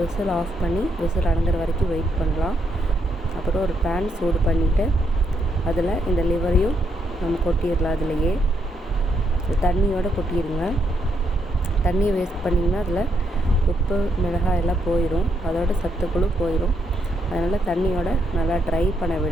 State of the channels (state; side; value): normal; both; correlation 0.77